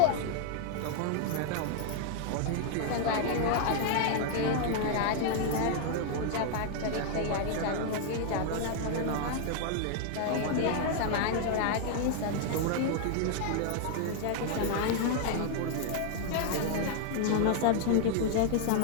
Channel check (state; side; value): different; both; correlation 0.00